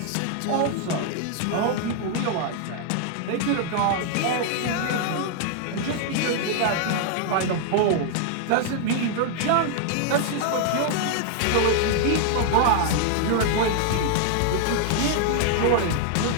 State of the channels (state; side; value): different; both; correlation 0.00